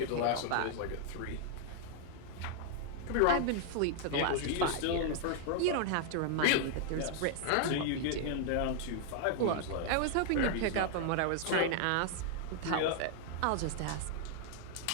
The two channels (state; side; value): different; both; correlation 0.00